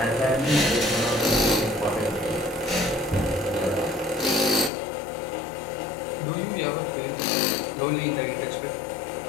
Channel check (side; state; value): right; drops out; at 4.7 s